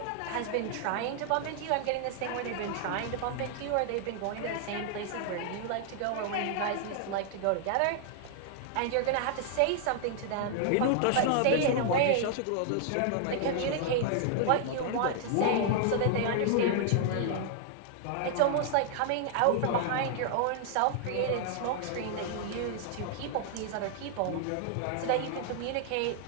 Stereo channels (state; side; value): different; both; correlation 0.00